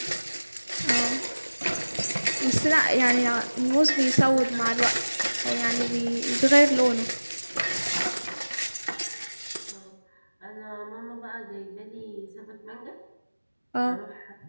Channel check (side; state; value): both; inverted; correlation -1.00